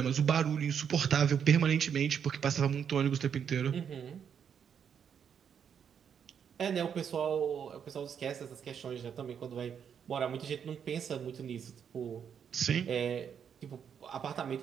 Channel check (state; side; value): quieter; left; 7.8 dB